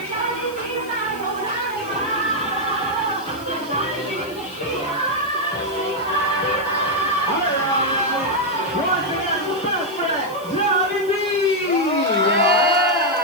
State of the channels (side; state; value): left; noise; hiss, 21 dB below the sound